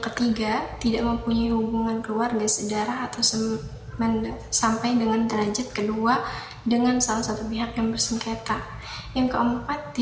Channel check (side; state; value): both; identical; correlation 1.00